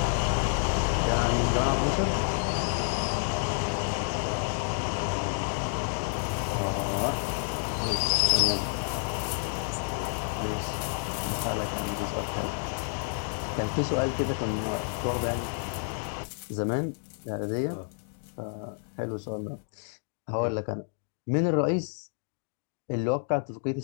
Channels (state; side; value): silent; right; 58 dB below the other